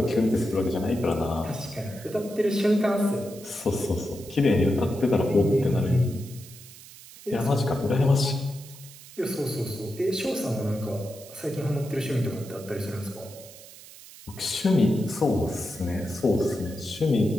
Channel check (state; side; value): noise; right; hiss, 18 dB below the sound